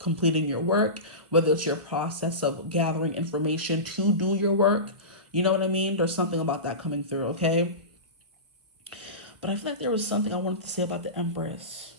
your work, whether it's your process of gathering information to do your work. You know what I mean? There's something about that coming through, okay? But I feel like there was something I wanted to say about the Empress.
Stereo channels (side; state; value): left; late; 1.3 ms